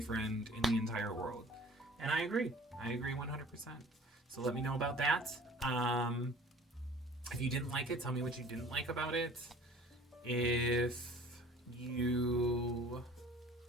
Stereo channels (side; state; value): both; normal; correlation 0.48